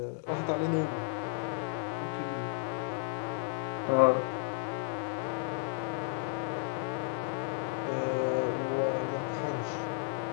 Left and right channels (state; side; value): silent; right; digital silence